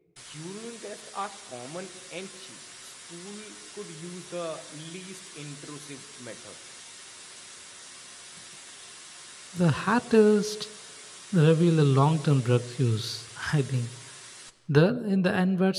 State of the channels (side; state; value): both; identical; correlation 1.00